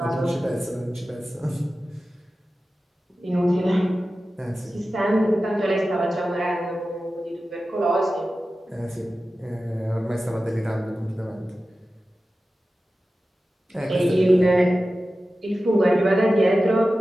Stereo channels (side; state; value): both; normal; correlation 0.94